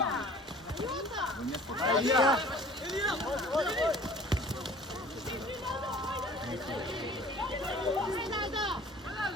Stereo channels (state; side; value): normal; both; correlation 0.48